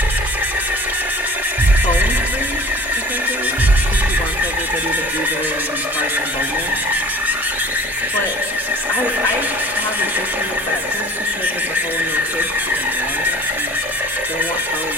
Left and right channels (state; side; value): normal; both; correlation 0.46